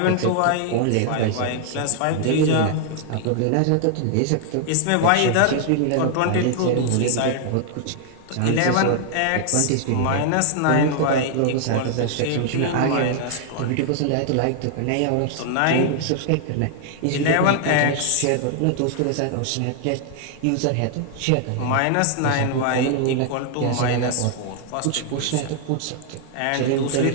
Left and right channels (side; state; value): both; different; correlation 0.00